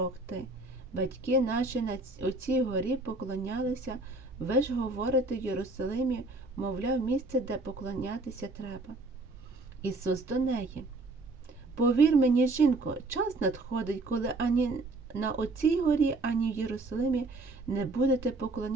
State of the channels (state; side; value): quieter; left; 3.1 dB